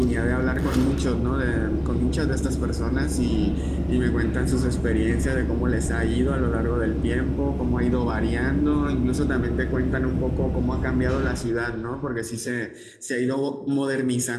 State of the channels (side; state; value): both; identical; correlation 1.00